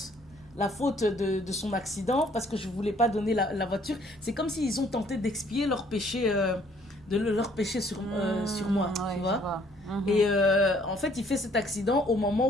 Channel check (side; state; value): both; normal; correlation 0.62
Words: de son accident, parce que je ne voulais pas donner la voiture, c'est comme s'ils ont tenté d'expier leur péché, leur péché sur moi, Ouais, tu je vois. Mhm. Et en fait, il fait cet accident au